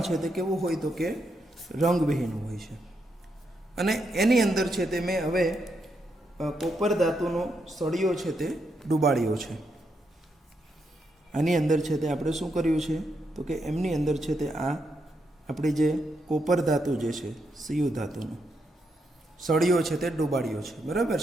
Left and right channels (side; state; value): both; normal; correlation 0.81